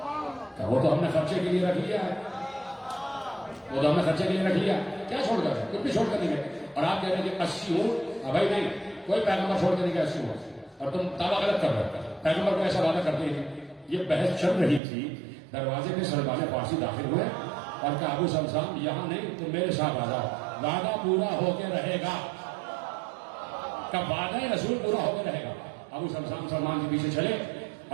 وہ تو ہم نے خرچے کے لیے رکھ لیا ہے, وہ تو ہم نے خرچے کے لیے رکھ لیا, کیا چھوڑ کر گئے, کچھ بھی چھوڑ کر نہیں گئے. اور آپ کہہ رہے ہیں کہ 80 اونٹ, بھائی نہیں, کوئی پیغمبر چھوڑ کے نہیں گیا 80 اونٹ, اور تم دعویٰ غلط کر رہے ہو, پیغمبر کو ایسا وعدہ کرتے ہیں. یہ بحث چل رہی تھی, دروازے میں سلمان فارسی داخل ہوئے اور کہا ابو سمسام یہاں نہیں, تم میرے ساتھ آ جاؤ, وعدہ پورا ہو کے رہے گا. کب وعدہ رسول پورا ہو کے رہے گا. ابو سمسام سلمان کے پیچھے چلے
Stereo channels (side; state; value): left; drops out; at 14.8 s